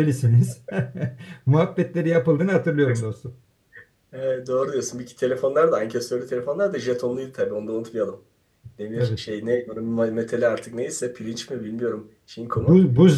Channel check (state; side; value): identical; both; correlation 1.00